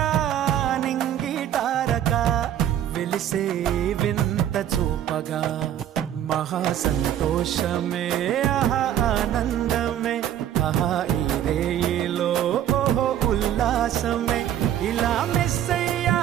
నింగిటారక వెలిసే వింత చూపగా మహా సంతోషమే ఆహా ఆనందమే ఆహా ఈ రేయిలో ఓహో ఉల్లాసమే. ఇలా మెస్సయ్యా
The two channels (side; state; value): left; quieter; 11.0 dB